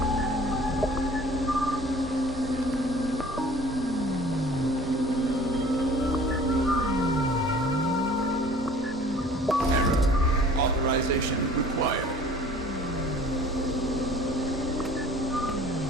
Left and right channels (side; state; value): both; normal; correlation 0.48